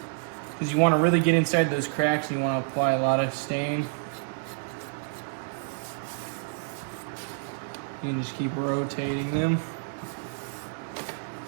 because you want to really get inside those cracks and you want to apply a lot of stain. You can just keep rotating them.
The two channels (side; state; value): left; silent; digital silence